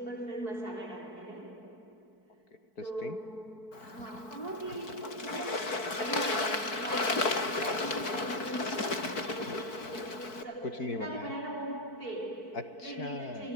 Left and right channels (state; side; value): late; right; 4.6 ms